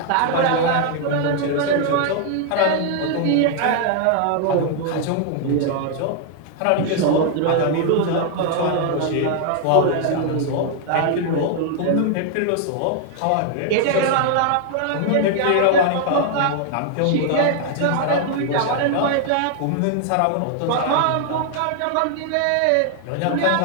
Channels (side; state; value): both; different; correlation 0.00